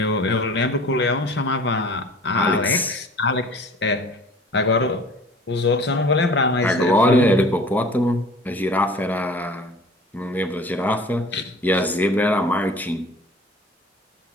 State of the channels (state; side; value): normal; both; correlation 0.45